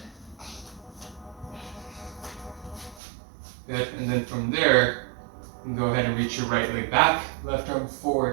Good, and then from there, you can go ahead and reach your right leg back, left arm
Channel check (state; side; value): drops out; left; at 3.0 s